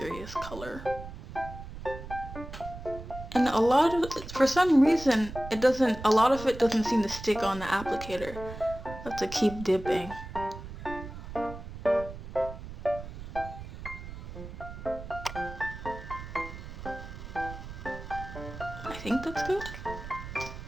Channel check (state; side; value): noise; right; rumble, 11 dB below the sound